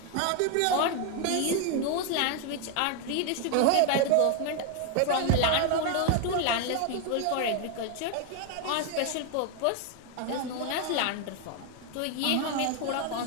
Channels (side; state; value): both; different; correlation 0.01